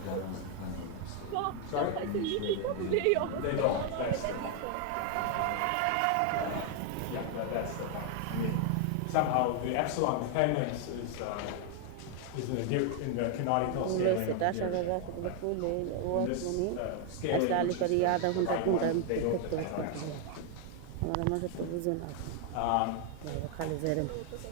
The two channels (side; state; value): both; different; correlation 0.00